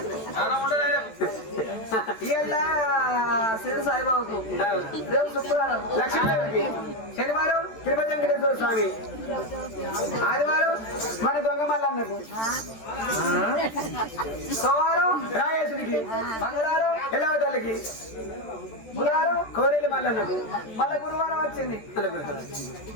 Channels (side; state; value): right; late; 13 ms